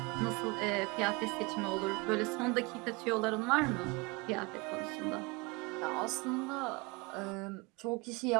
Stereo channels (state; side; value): quieter; left; 26.3 dB